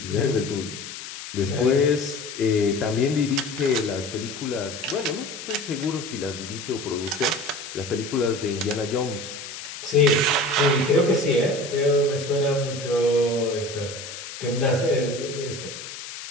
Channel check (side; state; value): left; noise; hiss, 11 dB below the sound